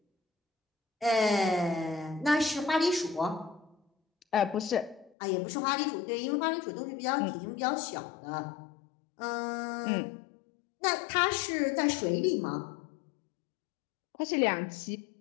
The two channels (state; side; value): drops out; right; at 5.1 s